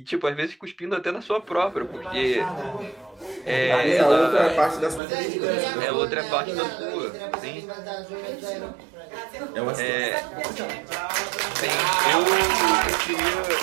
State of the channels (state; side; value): drops out; left; at 5.0 s